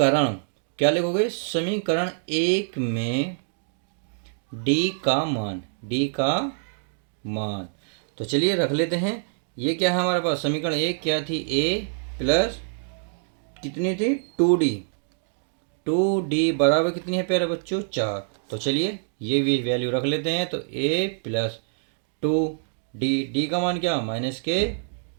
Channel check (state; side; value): silent; left; digital silence